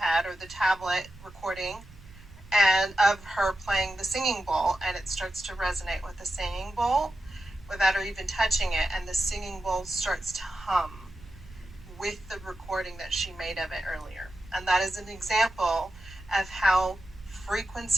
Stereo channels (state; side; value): noise; right; rumble, 20 dB below the sound